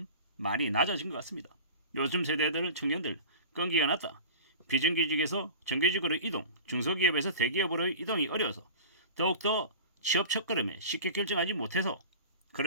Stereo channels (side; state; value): both; inverted; correlation -0.37